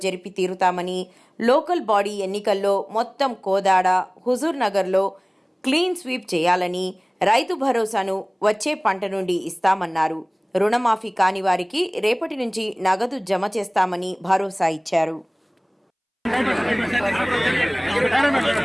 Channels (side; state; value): both; identical; correlation 1.00